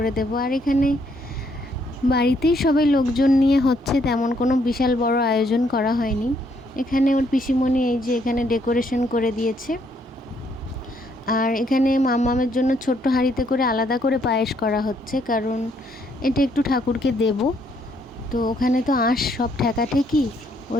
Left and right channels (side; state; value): both; normal; correlation 0.70